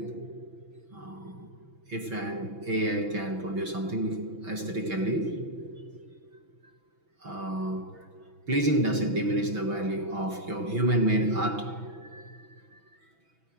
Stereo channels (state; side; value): late; left; 6.1 ms